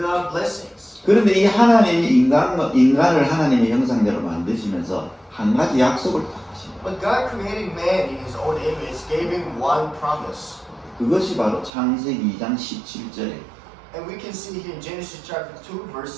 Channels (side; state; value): left; drops out; at 11.7 s